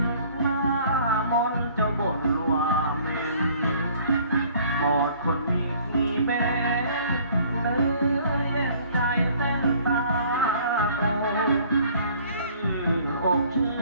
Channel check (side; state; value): both; inverted; correlation -0.56